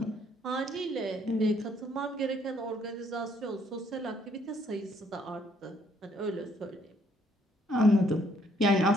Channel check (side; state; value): both; normal; correlation 0.67